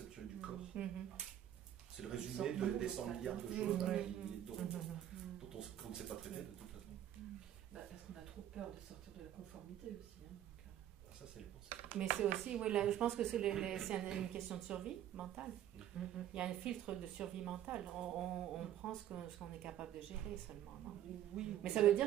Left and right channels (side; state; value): left; quieter; 11.4 dB